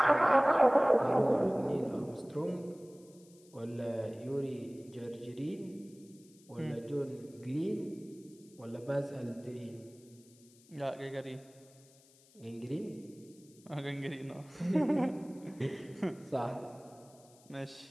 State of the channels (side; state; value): left; noise; hiss, 27 dB below the sound